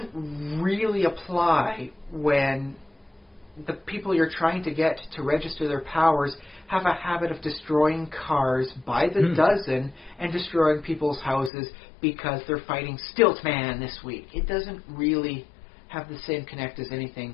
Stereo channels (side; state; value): right; drops out; at 11.5 s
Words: really apply when the people you're trying to get to register their powers have a habit of destroying cars by the dozen and destroying people's houses because they're fighting Stiltman this week. It doesn't really have the same connect as